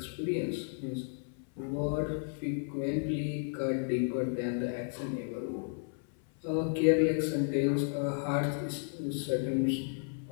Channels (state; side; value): silent; right; 56 dB below the other